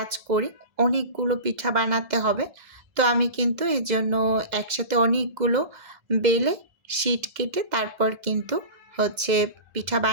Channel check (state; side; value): late; left; 2.0 ms